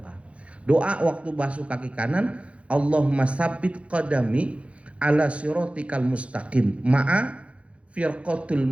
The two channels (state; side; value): late; left; 0.062 ms